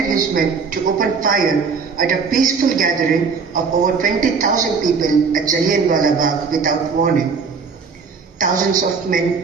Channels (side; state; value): left; quieter; 5.2 dB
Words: his men to open fire at a peaceful gathering of over 20,000 people at Jallianwala Bagh without warning. Thousands of